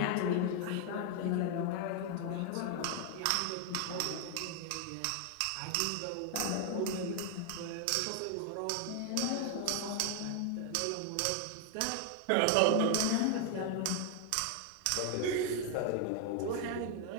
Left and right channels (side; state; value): both; different; correlation 0.00